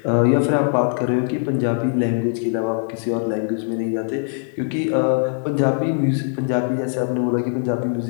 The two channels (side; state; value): right; silent; digital silence